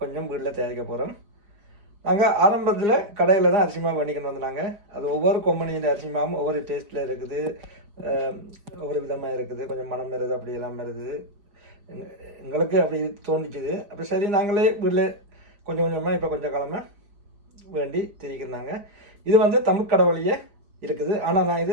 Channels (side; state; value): left; late; 4.9 ms